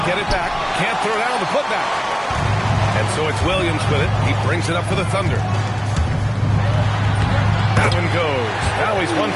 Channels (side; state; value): both; identical; correlation 1.00